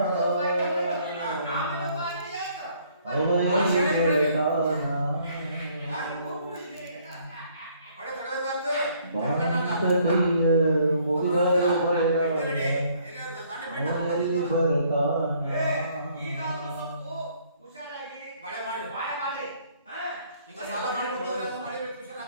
ಅವಯಲ್ಲಿ ಕೇಳ್ತಾನ ಬಡೆ ತಡೆದಾತು ಬಾಂತ ಕೈಯ ಮುಗಿದರು ಅವಯಲ್ಲಿ ಬರ್ತಾನ ಈಗಾದ್ರೂ ಸ್ವಲ್ಪ ಹುಷಾರಾಗಿ ಬಳೆ ಮಾಡಿ ಬಾಯ ಮಾಡಿ ಈಗ ಸಾಲ ಮಾಡಿ ಬಂದವ್ರೆ ಅದು ಮಳೆ ಬೆಳೆ ಹುಷಾರ್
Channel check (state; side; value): inverted; both; correlation -0.64